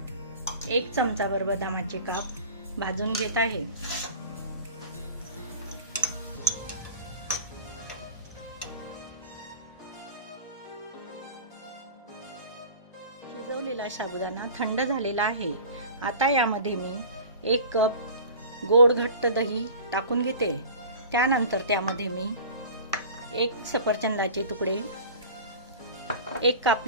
1 चमचाभर बदामाचे काप भाजून घेत आहे। शिजवलेला साबुदाणा थंड झालेला आहे। आता यामध्ये मी 1 कप गोड घट्ट दही टाकून घेते। त्यानंतर त्यामध्ये मी 1 सफरचंदाचे तुकडे, 1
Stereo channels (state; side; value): inverted; both; correlation -0.39